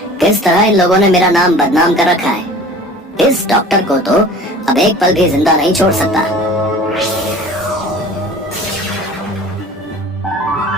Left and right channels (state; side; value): normal; both; correlation 0.43